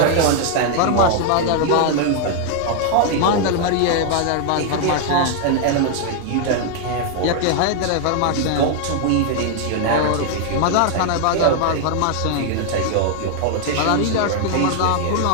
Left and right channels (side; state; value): both; different; correlation 0.00